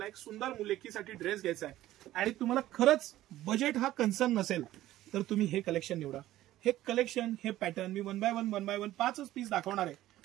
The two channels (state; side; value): quieter; left; 14.7 dB